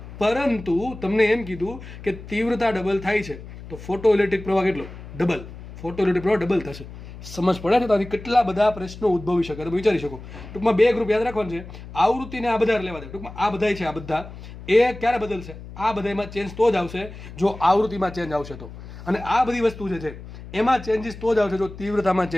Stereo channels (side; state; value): left; noise; hum, 14 dB below the sound